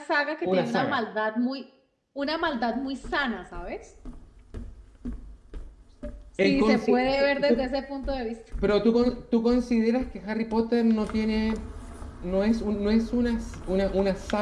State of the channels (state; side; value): identical; both; correlation 1.00